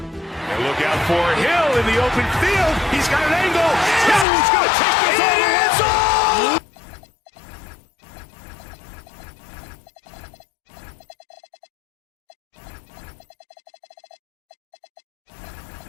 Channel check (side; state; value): right; drops out; at 4.2 s